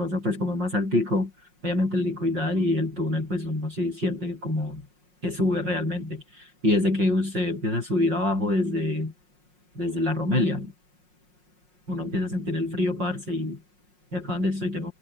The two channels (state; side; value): late; left; 5.5 ms